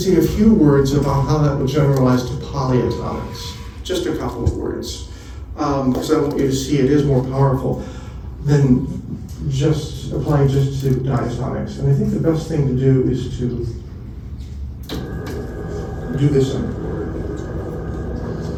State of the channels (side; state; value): both; identical; correlation 1.00